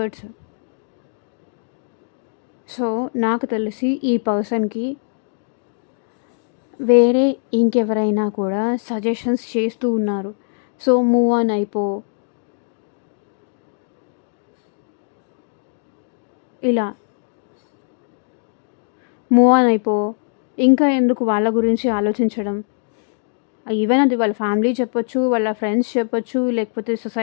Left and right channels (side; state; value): right; silent; digital silence